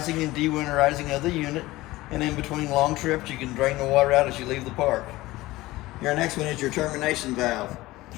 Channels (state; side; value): quieter; right; 18.5 dB